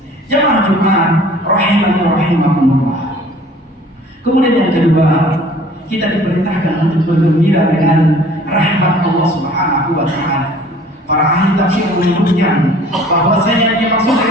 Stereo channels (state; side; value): normal; both; correlation 0.50